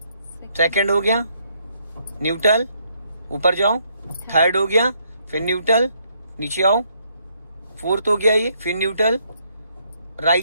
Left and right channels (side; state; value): both; inverted; correlation -0.72